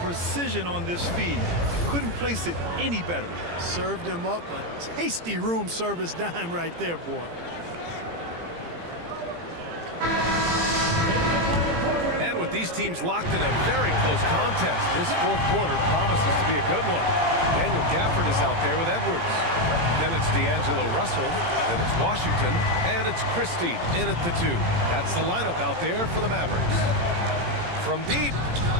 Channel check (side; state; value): left; late; 18 ms